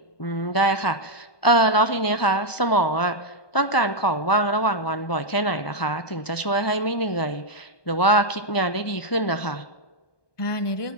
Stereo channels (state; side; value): late; right; 1.2 ms